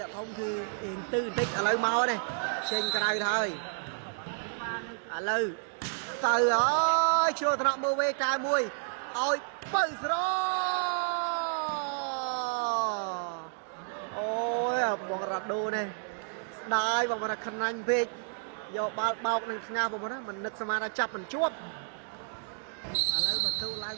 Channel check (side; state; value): left; silent; digital silence